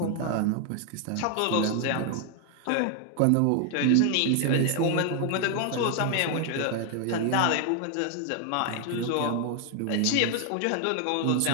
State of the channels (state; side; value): different; both; correlation 0.01